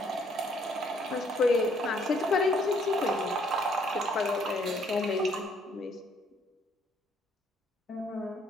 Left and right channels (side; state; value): both; normal; correlation 0.66